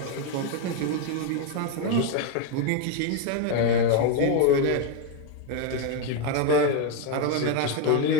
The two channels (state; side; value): different; both; correlation 0.01